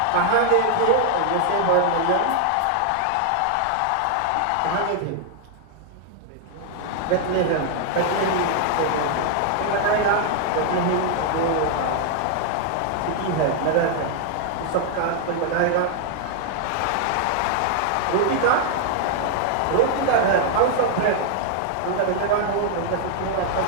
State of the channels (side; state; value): both; different; correlation 0.00